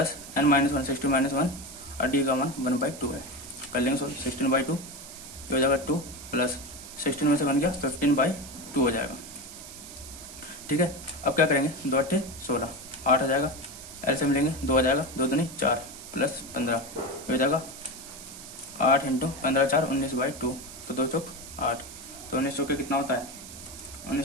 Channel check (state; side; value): noise; right; hiss, 14 dB below the sound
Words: n-1 16 - 1 और डी का मान 1/2 है। कर लेंगे 16/2 हो जाएगा 2 प्लस 16 में से 1 गया 15/2 हो जाएगा। ठीक है, अब क्या करेंगे 2 8 16 8 आ जाएगा, एलसीएम लेंगे 2 आ जाएगा, 2 दूनी 4 प्लस 15 हो जाएगा 8 इंटू 15 4 19/2, तो 2 चौक 8, तो 19 चौके कितना होता है